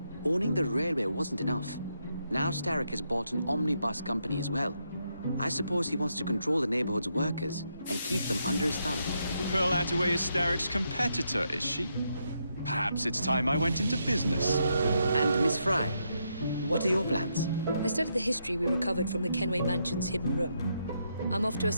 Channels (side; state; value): both; inverted; correlation -0.80